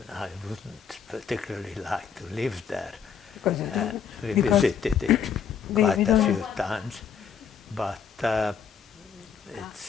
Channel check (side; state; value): right; quieter; 7.2 dB